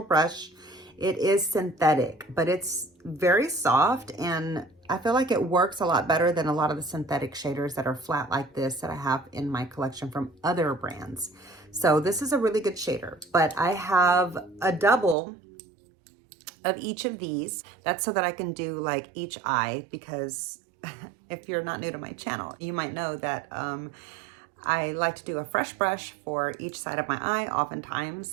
brush. It is synthetic, but it's very soft, and I feel like it works a lot better than a lot of the synthetic shaders that are flat like this that I have in my collection from other brands. So this is a really good shader, but I have a double of each of these. That's so that I can do like each eye, because if you're not new to my channel, you might know that I like to do a fresh brush for each side of my eye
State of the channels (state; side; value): drops out; left; at 15.2 s